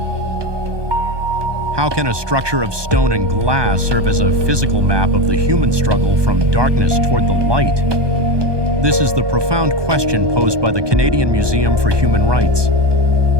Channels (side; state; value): left; late; 1.2 ms